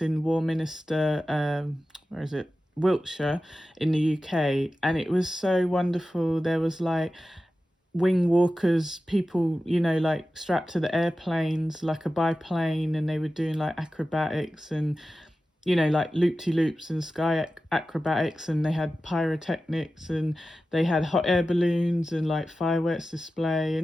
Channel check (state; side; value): normal; both; correlation 0.94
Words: in Warminster, where is it? Wiltshire in the UK, and it was so wonderful. There was like wing walkers, people, like strapped to the airplanes like a biplane, and they were doing like acrobatics and, like loop-de-loops and sky acrobatics, and they had pyrotechnics and they had hot air balloons and like fireworks display,